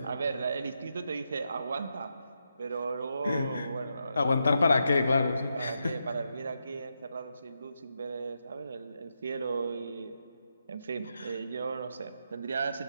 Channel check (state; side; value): inverted; both; correlation -0.84